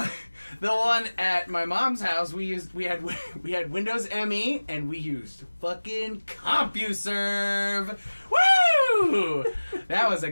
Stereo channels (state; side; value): inverted; both; correlation -1.00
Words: one at my mom's house, we had Windows ME, and we used fucking CompuServe. Woo! That was a